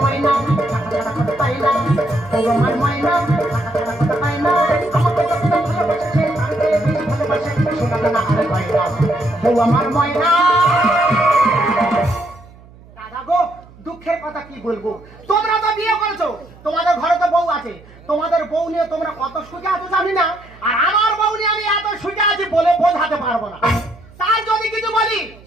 ময়না ছাড়া কথা পায় না ও আমার ময়না ছাড়া কথা পায় না আমাকে যতটা ভালোবাসে তার থেকে বেশি ভালোবাসে সোনা দানা আরে পায় না ও আমার ময়না। দাদা গো দুঃখের কথা কি বলবো, তোমরা তো বিয়ে করেছো, তোমাদের ঘরে তো বউ আছে, তোমাদের বউ নিয়ে তোমরা কত সুখে আছো জানি না, আর আমার বউ নিয়ে আমি এত সুখে আছি বলে বোঝাতে পারবো না। তাই যদি কিছু বলি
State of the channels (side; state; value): right; noise; hum, 23 dB below the sound